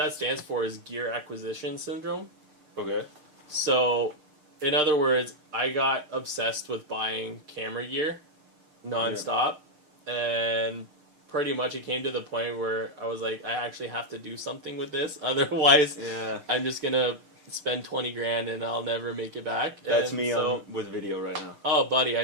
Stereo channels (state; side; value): late; left; 6.6 ms